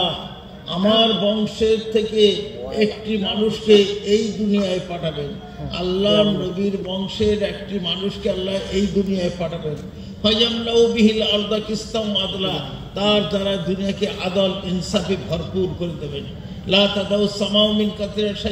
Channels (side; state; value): both; identical; correlation 1.00